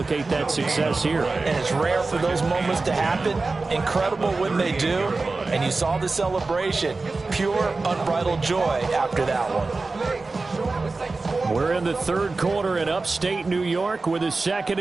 that success here. And it's rare for those moments to happen. Incredible when they do. And you saw the celebration. Pure, unbridled joy after that one. We're in the third quarter in upstate New York with a 2nd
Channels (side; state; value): left; quieter; 3.7 dB